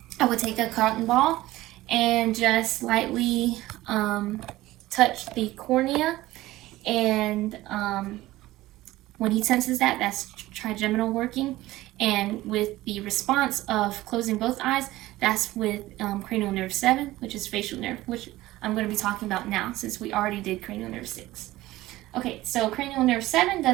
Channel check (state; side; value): quieter; left; 17.1 dB